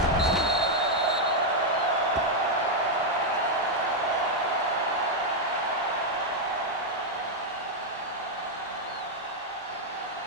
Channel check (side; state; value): both; normal; correlation 0.00